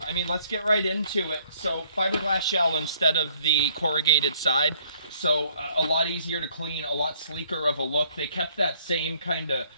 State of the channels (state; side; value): inverted; both; correlation -0.62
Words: I mean, let's get right into it. So, fiberglass shell instead of the corrugated side. So, a lot easier to clean, a lot sleeker of a look. They kept that same kind of,